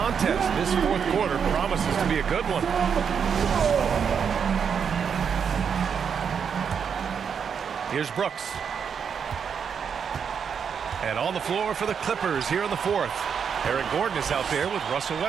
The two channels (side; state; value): left; quieter; 7.0 dB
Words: this fourth quarter promises to be a good one. Here's Brooks. And on the floor for the Clippers here in the fourth. Eric Gordon is out there with Russell